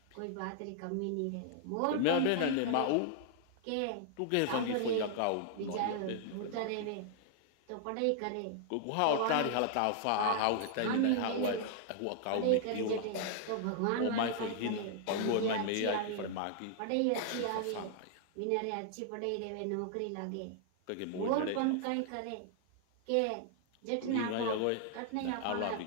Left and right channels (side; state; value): both; different; correlation -0.01